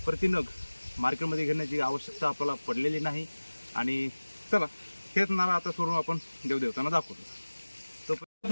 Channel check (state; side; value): inverted; both; correlation -1.00